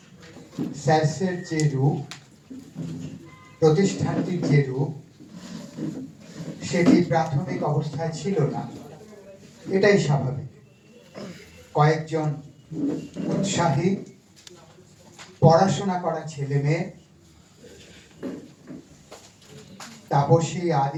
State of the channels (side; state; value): both; identical; correlation 1.00